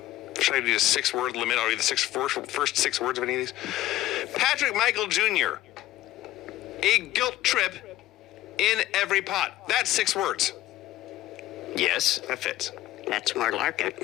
Should I do a 6-word limit? I'll read the first 6 words of any of these. Patrick Michael Jr. A guilt trip in every pot. That's 6 words. Yes. That fits. That's more like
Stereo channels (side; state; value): right; quieter; 15.2 dB